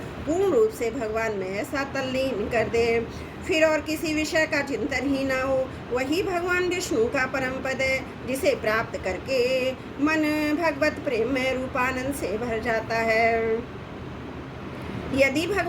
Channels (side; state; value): both; identical; correlation 1.00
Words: पूर्ण रूप से भगवान में ऐसा तल्लीन कर दे, फिर और किसी विषय का चिंतन ही ना हो। वही भगवान विष्णु का परम पद है, जिसे प्राप्त करके मन भगवत प्रेम में रूपानंद से भर जाता है। यदि